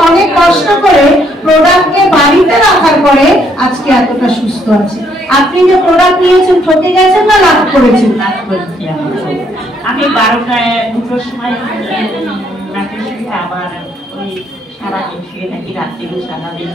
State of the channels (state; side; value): normal; both; correlation 0.70